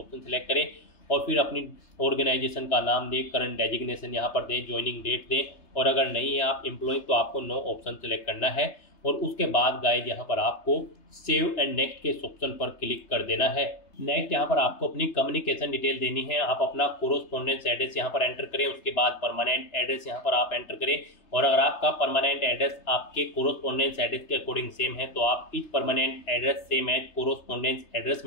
सेलेक्ट करें। और फिर अपनी ऑर्गेनाइजेशन का नाम दें, करंट डेजिग्नेशन यहाँ पर दें, ज्वाइनिंग डेट दें। और अगर नहीं है आप एम्प्लॉय तो आपको नो ऑप्शन सेलेक्ट करना है। और उसके बाद गाइज यहाँ पर आपको सेव एंड नेक्स्ट के ऑप्शन पर क्लिक कर देना है। नेक्स्ट यहाँ पर आपको अपनी कम्युनिकेशन डिटेल देनी है। आप अपना कोरोस्पोंडेंस एड्रेस यहाँ पर एंटर करें। उसके बाद परमानेंट एड्रेस यहाँ पर आप एंटर करें। और अगर आपका परमानेंट एड्रेस आपके कोरोस्पोंडेंस एड्रेस के अकॉर्डिंग सेम है तो आप इस permanent address same as correspondence address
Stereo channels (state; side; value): late; right; 3.3 ms